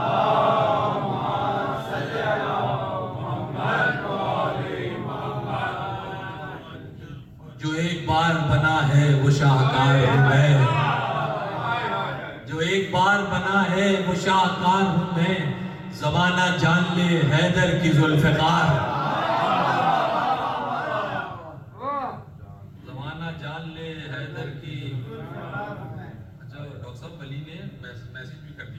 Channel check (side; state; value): both; identical; correlation 1.00